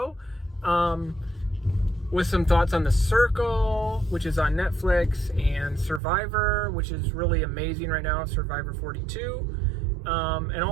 with some thoughts on The Circle, which is on Netflix, and Survivor, which is really amazing right now, Survivor 42. And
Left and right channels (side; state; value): left; drops out; at 6.0 s